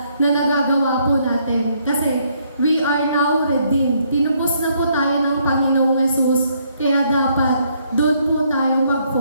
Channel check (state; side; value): inverted; both; correlation -0.70